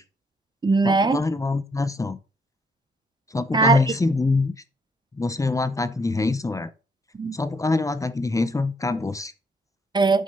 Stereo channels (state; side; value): normal; both; correlation 0.69